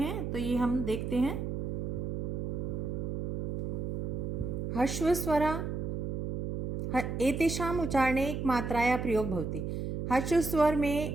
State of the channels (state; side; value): noise; right; hum, 2 dB below the sound